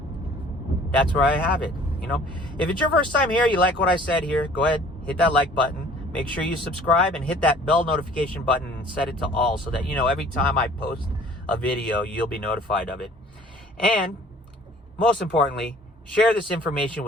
that's where I have it. If it's your first time here, you like what I said here, go ahead, hit that like button. Make sure you subscribe and hit that bell notification button and set it to all so that, every time I post a video, you'll be notified of it. And most importantly, share this information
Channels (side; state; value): both; normal; correlation 0.52